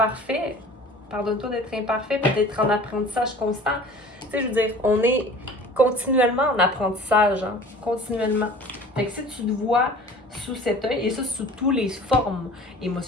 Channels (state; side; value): normal; both; correlation 0.44